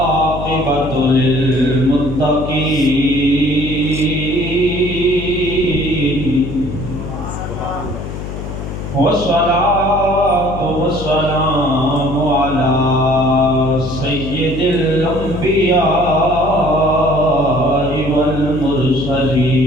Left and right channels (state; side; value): noise; left; hum, 8 dB below the sound